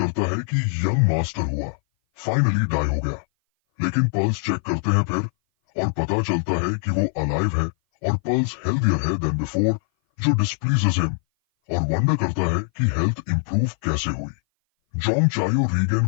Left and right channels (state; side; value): silent; right; 58 dB below the other